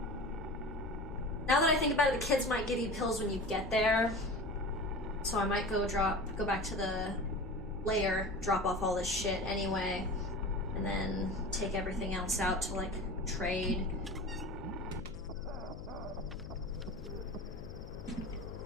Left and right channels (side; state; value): left; noise; hum, 13 dB below the sound